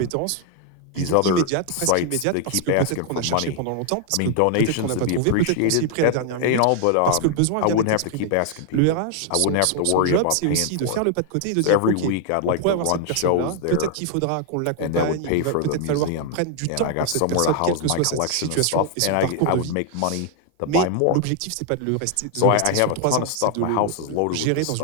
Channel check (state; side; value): different; both; correlation 0.00